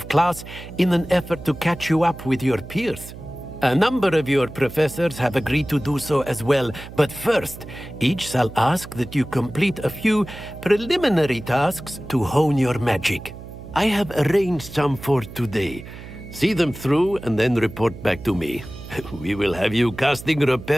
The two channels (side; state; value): right; noise; hum, 14 dB below the sound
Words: class in an effort to catch you up with your peers. A number of your professors have agreed to do so as well, but first, each shall ask that you complete a few preliminary tasks to hone your magic. I have arranged some for today. See them through and then report back to me. We will have you casting